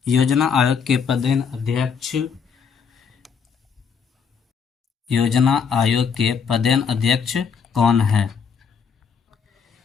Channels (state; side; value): quieter; right; 6.3 dB